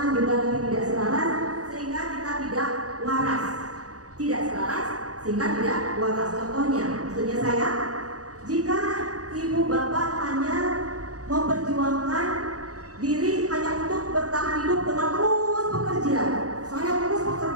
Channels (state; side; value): late; left; 0.67 ms